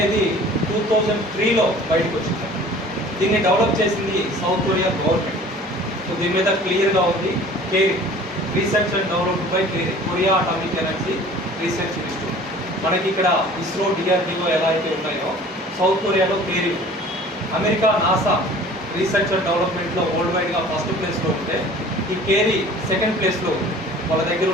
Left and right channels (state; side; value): normal; both; correlation 0.46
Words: 2003లో బయటకు వచ్చింది. దీన్ని డెవలప్ చేసింది సౌత్ కొరియా గవర్నమెంట్. సో దీని మీద క్లియర్గా ఉంది, KAERI research and developed by Korea atomic energy research institute. మనకి ఇక్కడ ఇస్రో, DRDO ఎలా అయితే ఉన్నాయో సౌత్ కొరియాలో KAERI, America NASA research and డెవలప్మెంట్లో వరల్డ్ వైడ్గా ఫస్ట్ ప్లేస్లో ఉంటే ఈ కేరీ సెకండ్ ప్లేస్లో ఉంది. వాళ్ళ దగ్గర